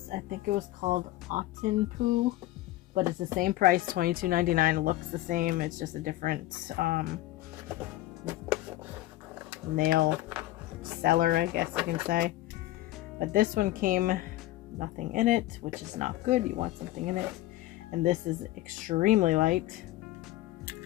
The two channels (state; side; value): quieter; right; 16.0 dB